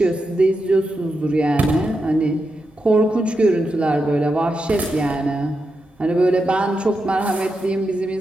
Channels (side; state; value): both; normal; correlation 0.87